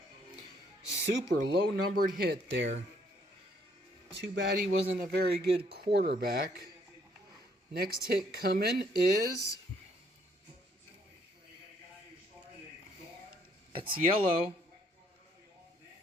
Super low numbered hit there. Too bad he wasn't a very good quarterback. Next hit coming is... That's yellow.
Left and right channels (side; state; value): both; normal; correlation 0.67